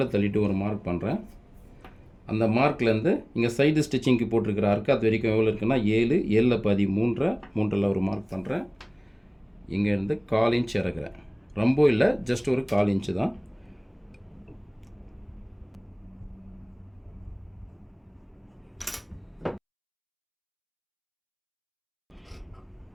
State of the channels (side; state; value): both; identical; correlation 1.00